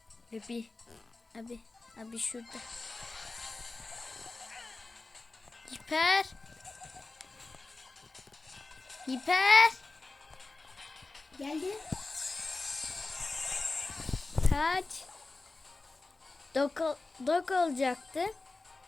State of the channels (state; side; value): quieter; right; 3.4 dB